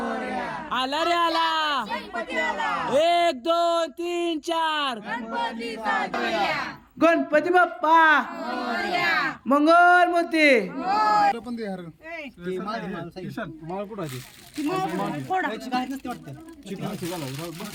आला रे आला 1 2 3 4 गणपती बाप्पा मंगल मूर्ती पण दे यार. किशन माळ कुठं आहे?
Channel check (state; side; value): identical; both; correlation 1.00